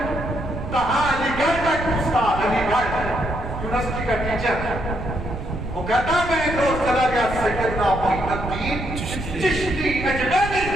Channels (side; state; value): right; noise; rumble, 8 dB below the sound